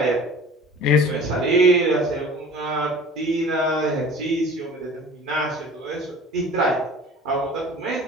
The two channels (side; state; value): both; normal; correlation 0.43